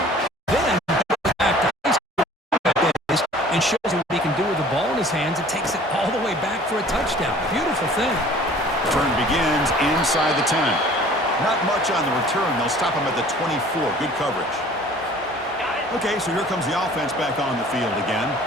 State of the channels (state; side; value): normal; both; correlation 0.49